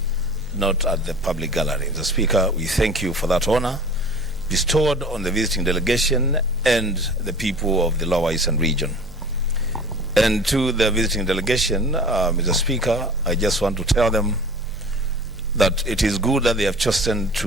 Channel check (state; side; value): noise; right; hum, 21 dB below the sound